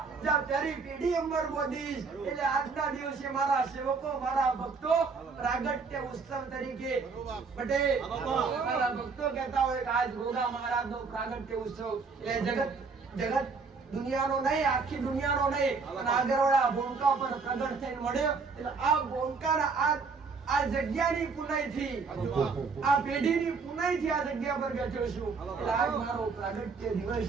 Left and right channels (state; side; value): quieter; left; 4.8 dB